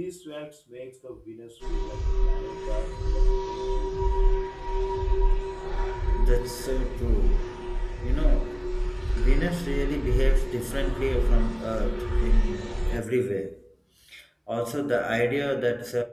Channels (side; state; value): both; identical; correlation 1.00